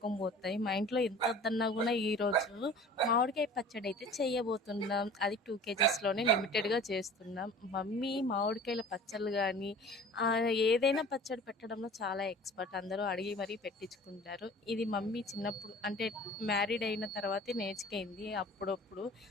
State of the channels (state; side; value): normal; both; correlation 0.44